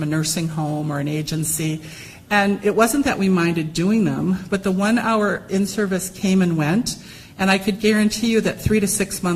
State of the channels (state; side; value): identical; both; correlation 1.00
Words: a nursing home or an agency? And it wasn't that we minded doing them, but the 1-hour in-service came and went, and I could guarantee you that 3 to 6